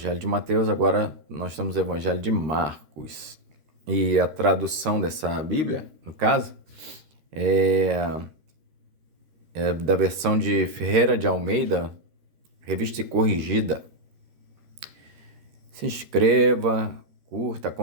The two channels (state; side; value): late; left; 13 ms